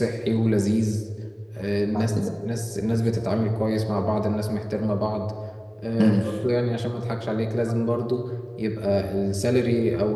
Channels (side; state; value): both; identical; correlation 1.00